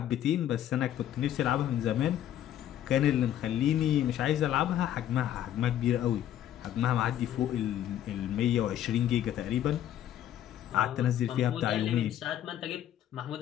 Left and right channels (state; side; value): quieter; right; 11.3 dB